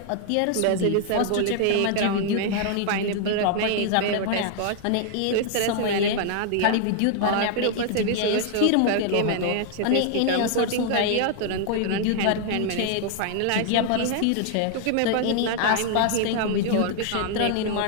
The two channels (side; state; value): both; different; correlation 0.00